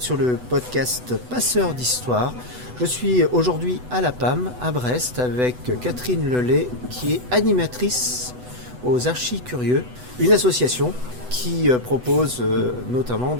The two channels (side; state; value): left; late; 8.0 ms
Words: sur le podcast Passeurs d'Histoire. Je suis aujourd'hui à la PAM, à Brest, avec Catherine Lelay, qui est animatrice aux Archis Curieux, une association qui propose notamment